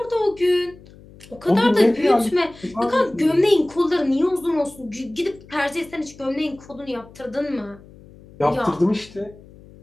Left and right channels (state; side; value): noise; left; hum, 22 dB below the sound